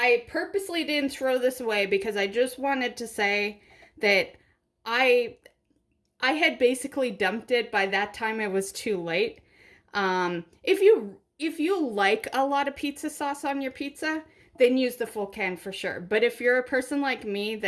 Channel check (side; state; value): both; identical; correlation 1.00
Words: purposely didn't throw this away because I just wanted to say that I had basically dumped it. By that time it was too late. If you like a lot of pizza sauce on your pizza, then use the full can for sure. But if you're a person like me